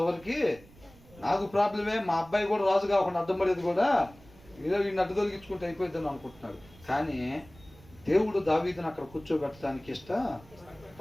వరకు నాకు ప్రాబ్లమే. మా అబ్బాయి కూడా రాజు కాకుండా అడ్డం పడేది కూడా ఏదో వీడిని అడ్డు తొలగించుకుంటే అయిపోద్దని అనుకుంటున్నాడు. కానీ దేవుడు దావీదుని అక్కడ కూర్చోబెట్టడానికి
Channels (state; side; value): noise; right; rumble, 24 dB below the sound